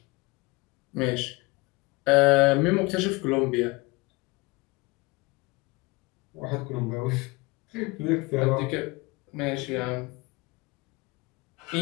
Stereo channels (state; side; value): quieter; right; 24.5 dB